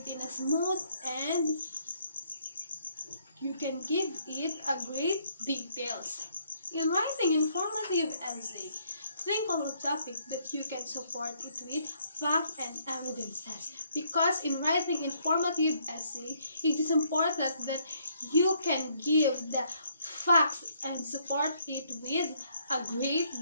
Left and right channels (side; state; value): both; inverted; correlation -0.68